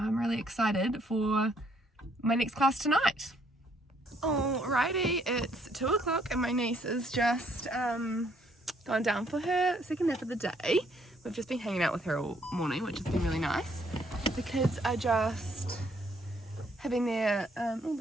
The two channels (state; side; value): normal; both; correlation 0.67